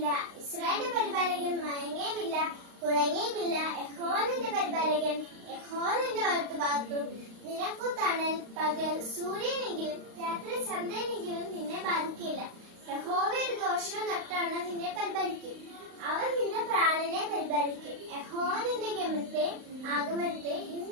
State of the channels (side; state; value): left; late; 35 ms